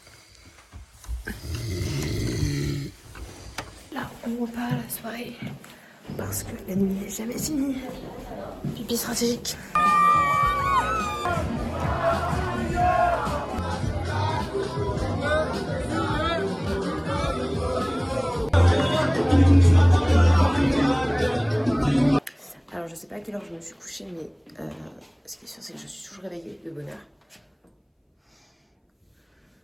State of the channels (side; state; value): both; identical; correlation 1.00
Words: Là, on repart à la soirée parce que la nuit n'est jamais finie. Pipi stratégique. Alors, je sais pas à quelle heure je me suis couchée, mais ce qui est sûr, c'est que je suis toujours réveillée de bonne heure.